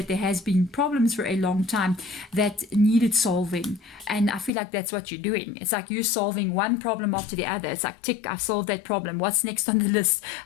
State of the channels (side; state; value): right; drops out; at 4.5 s